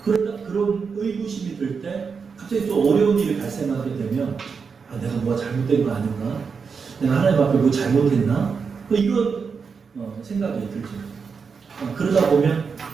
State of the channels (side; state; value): left; quieter; 5.6 dB